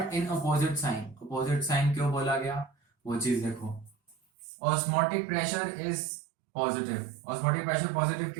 in opposite sign. Opposite sign क्यों बोला गया वो चीज देखो। Osmotic pressure is positive. Osmotic pressure positive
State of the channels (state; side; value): drops out; left; at 4.2 s